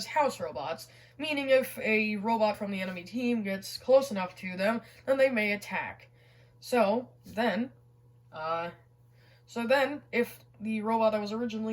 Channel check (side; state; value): both; identical; correlation 1.00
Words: house robots, meaning if a robot from the enemy team gets close enough to them, then they may attack. So then, if the robot that was